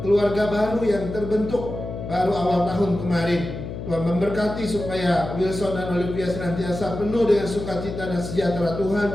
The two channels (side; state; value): left; noise; hum, 8 dB below the sound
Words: baru yang terbentuk baru awal tahun kemarin. Tuhan memberkati supaya Wilson dan Olivia senantiasa penuh dengan sukacita dan sejahtera Tuhan,